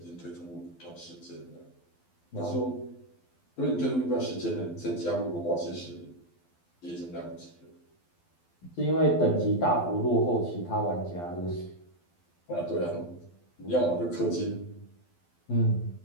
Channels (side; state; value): right; late; 12 ms